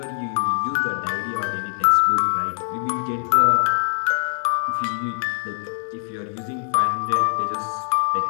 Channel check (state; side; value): silent; right; digital silence